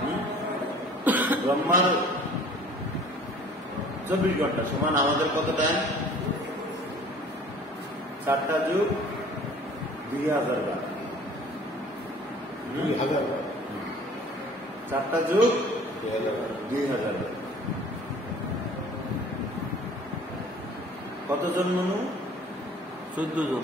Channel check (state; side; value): normal; both; correlation 0.50